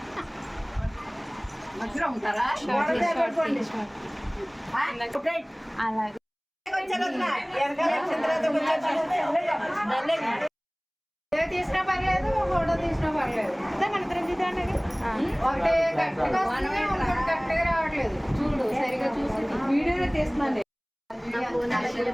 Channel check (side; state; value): both; identical; correlation 1.00